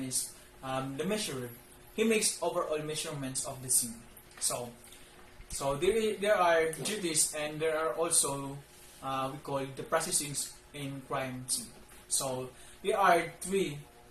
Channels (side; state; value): both; identical; correlation 1.00